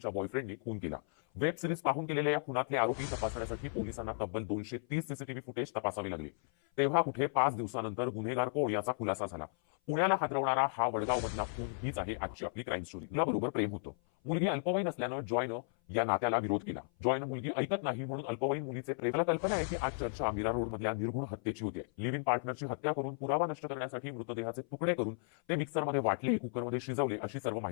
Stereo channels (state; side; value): silent; right; 54 dB below the other